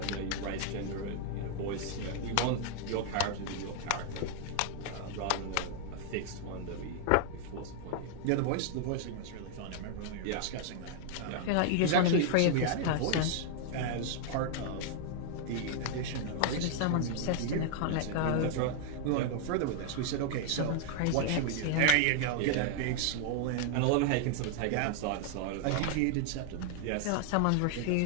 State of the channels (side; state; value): both; different; correlation -0.01